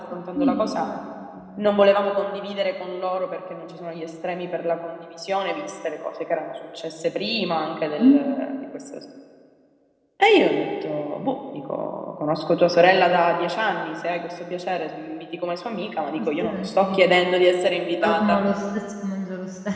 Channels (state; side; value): identical; both; correlation 1.00